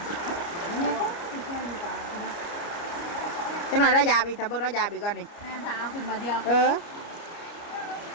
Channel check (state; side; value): late; right; 29 ms